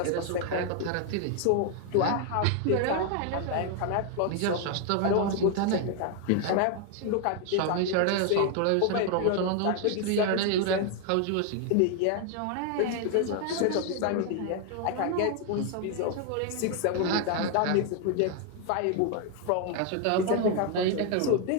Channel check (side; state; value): both; different; correlation 0.01